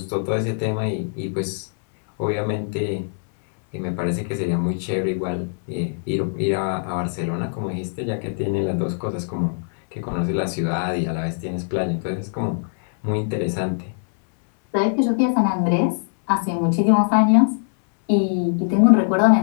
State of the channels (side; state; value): right; silent; 64 dB below the other